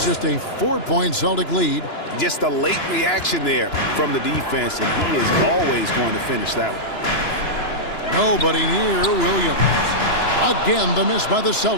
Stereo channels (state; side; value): late; right; 2.9 ms